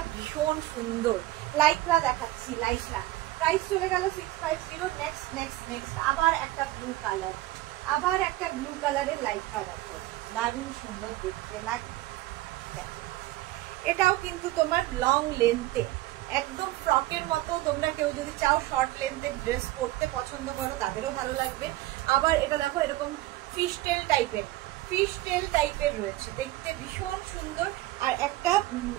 ভীষণ সুন্দর। লাইক্রা দেখাচ্ছি, লাইক্রা। প্রাইস চলে গেল 650। নেক্সট আবার একটা ব্লু কালারের লাইক্রা দেখো, দারুণ সুন্দর দেখতে লাগে। এটাও কিন্তু তোমার লং লেন্থে, একদম ফ্রকের মতো। তোমরা কেউ যদি চাও শর্ট লেন্থের ড্রেস পরতে পছন্দ করো তাদেরও ভালো লাগবে। আবার এটা দেখো এরকম ফিশ টেল টাইপের রয়েছে, দেখতে ভীষণ সুন্দর। আর একটা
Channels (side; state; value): left; quieter; 17.1 dB